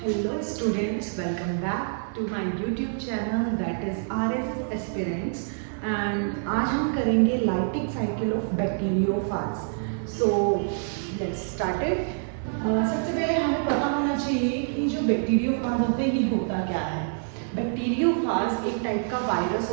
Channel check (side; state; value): left; silent; 58 dB below the other